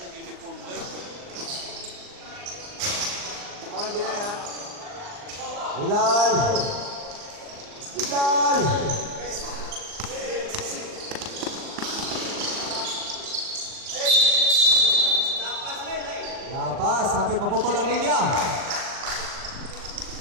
uniform boy. Ang ginaya. Legal. Lapas, sampai paputol ang linya.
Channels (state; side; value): late; left; 39 ms